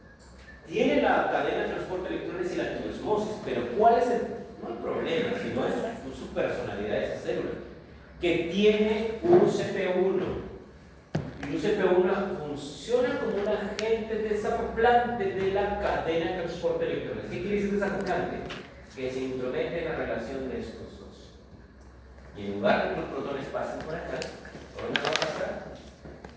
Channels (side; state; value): both; identical; correlation 1.00